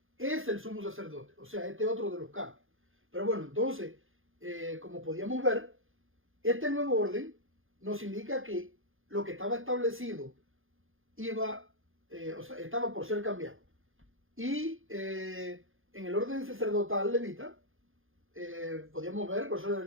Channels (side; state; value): left; late; 0.59 ms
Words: es el sumo sacerdote. O sea, este otro de los cambios. Pero bueno, entonces, como podíamos ver, este nuevo orden nos indica que lo que estaba establecido estaba por ser cambiado. Y en el orden sacerdotal levita, podíamos ver, por eso